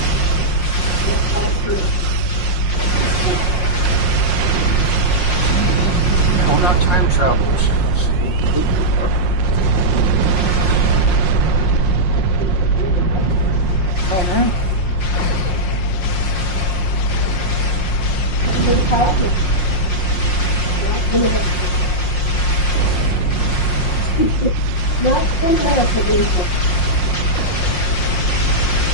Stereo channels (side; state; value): right; late; 5.6 ms